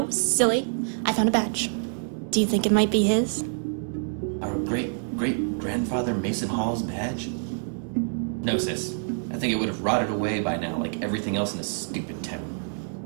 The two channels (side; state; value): left; silent; digital silence